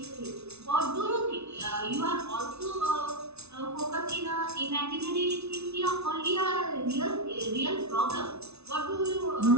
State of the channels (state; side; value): late; left; 0.81 ms